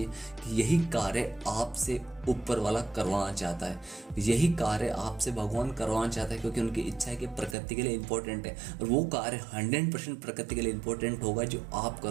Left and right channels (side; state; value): left; drops out; at 7.6 s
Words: कि यही कार्य आपसे ऊपर वाला करवाना चाहता है, यही कार्य आपसे भगवान करवाना चाहता है, क्योंकि उनकी इच्छा है कि प्रकृति के लिए इम्पोर्टेंट है। और वो कार्य 100% प्रकृति के लिए इम्पोर्टेंट होगा जो आप